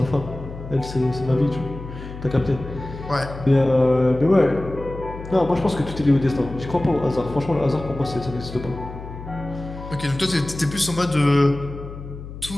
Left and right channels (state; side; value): noise; left; hum, 12 dB below the sound